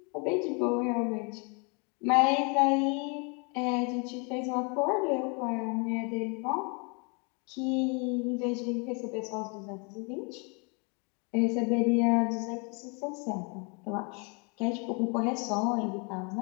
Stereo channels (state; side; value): quieter; right; 33.7 dB